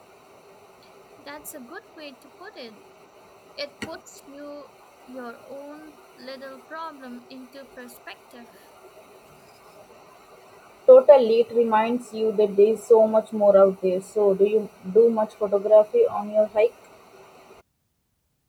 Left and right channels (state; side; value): identical; both; correlation 1.00